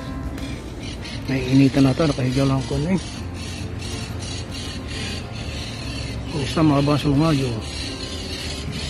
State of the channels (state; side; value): identical; both; correlation 1.00